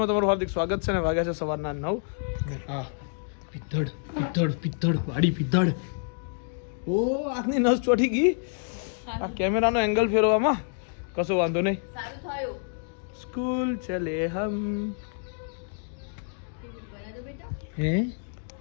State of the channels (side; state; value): right; silent; digital silence